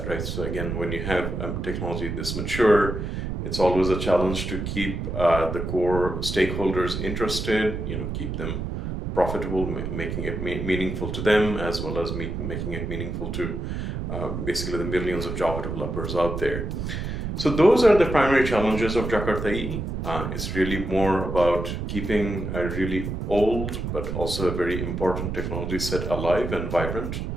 right? So again, when you have a technology this mature, it's always a challenge to keep the core stakeholders interested, keep them profitable, making it meaningful to them, as well as making it meaningful to basically the millions of Java developers out there. So those are the primary challenges of Jakarta. It's really more about keeping a really old, but also a very important technology set alive and vibrant,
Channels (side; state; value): right; noise; rumble, 4 dB below the sound